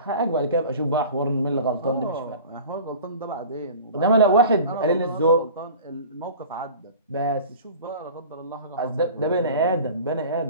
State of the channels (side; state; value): both; inverted; correlation -0.40